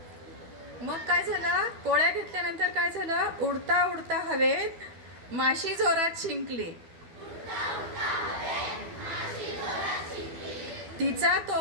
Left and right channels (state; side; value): late; left; 12 ms